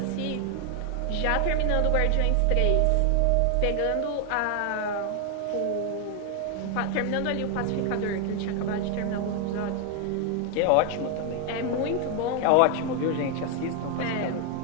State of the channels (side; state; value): both; different; correlation 0.01